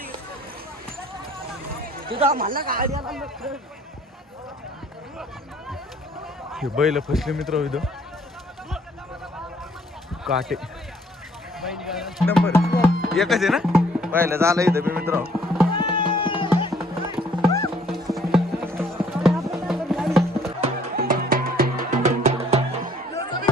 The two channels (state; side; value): normal; both; correlation 0.60